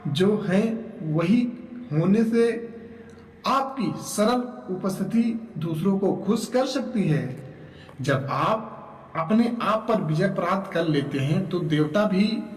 जो हैं वही होने से आपकी सरल उपस्थिति दूसरों को खुश कर सकती है। जब आप अपने आप पर विजय प्राप्त कर लेते हैं तो देवता भी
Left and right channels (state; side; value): identical; both; correlation 1.00